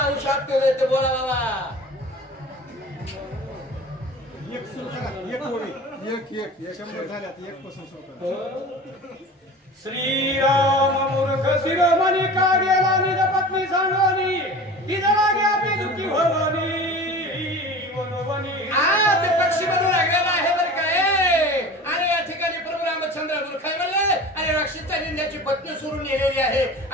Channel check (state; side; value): normal; both; correlation 0.37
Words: शाप देऊ देते. बोला बाबा श्रीराम मूर्ख शिरोमणी का गेला निज पत्नी सांगोनी ती जरा घ्या ती दुःखी भवानी मनोवनी. ते पक्षी बनू लागलेला आहे बरं काय. आणि या ठिकाणी प्रभू रामचंद्र मूर्ख म्हणले आणि राक्षीचा निंद्याची पत्नी सोडून नेलेली आहे.